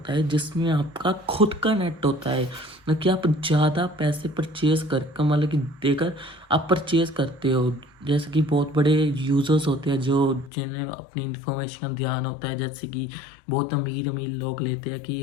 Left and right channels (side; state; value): right; drops out; at 10.5 s